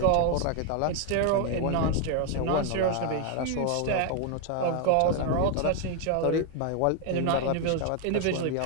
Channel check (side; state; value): both; different; correlation 0.01